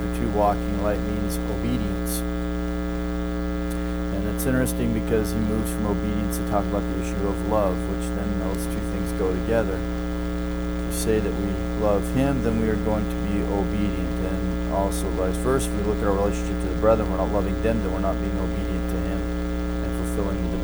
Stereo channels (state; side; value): identical; both; correlation 1.00